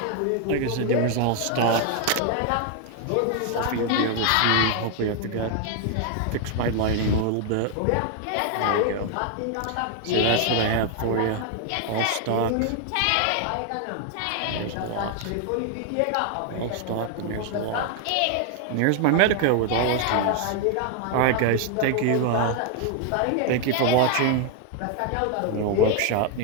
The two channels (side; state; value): both; different; correlation 0.00